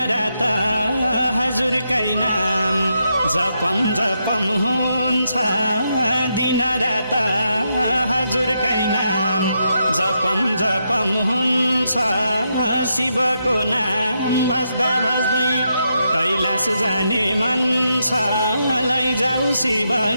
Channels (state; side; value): inverted; both; correlation -0.82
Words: हजुरकै नाम जपम जपम हुन्छ दिनरात हजुरकै नाम जपम जपम हुन्छ शिवको नाम बस्दा बस्दै कैलाश जाने मन छ लैजाऊ शिव